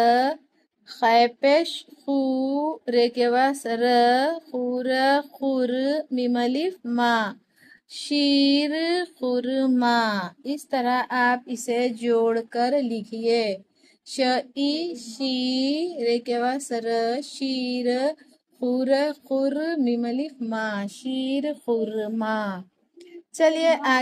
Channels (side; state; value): both; identical; correlation 1.00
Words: खैपेश खू, रे के पास र, खूर खुर, मीम अलिफ मा, शीर खुरमा। इस तरह आप इसे जोड़कर लिखिए। श ई शी, रे के पास र, शीर, खुर खुर, मीम अलिफ मा, शीर खुरमा। चलिए